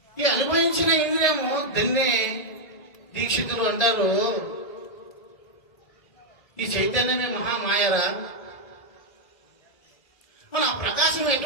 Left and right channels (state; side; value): late; right; 2.0 ms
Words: ఈ అనుభవించిన ఇంద్రియము దాన్ని దీక్షితులు అంటారు, ఈ చైతన్యమే మహామాయరా. మన ప్రకాశం